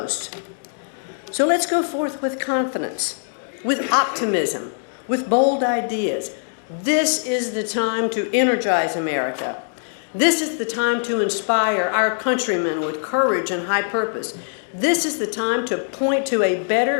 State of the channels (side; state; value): right; silent; digital silence